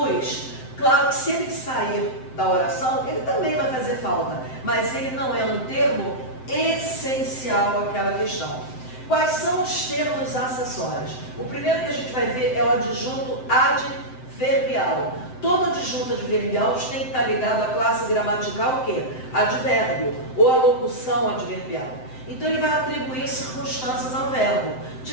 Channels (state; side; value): late; right; 7.8 ms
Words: Claro que se ele sair da oração, ele também vai fazer falta, mas ele não é um termo essencial àquela questão. Quais são os termos acessórios? O primeiro que a gente vai ver é o adjunto adverbial. Todo adjunto adverbial tem que estar ligado à classe gramatical o quê? Advérbio, ou à locução adverbial. Então ele vai atribuir circunstâncias ao verbo,